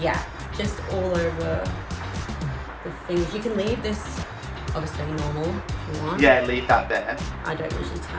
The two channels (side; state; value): both; identical; correlation 1.00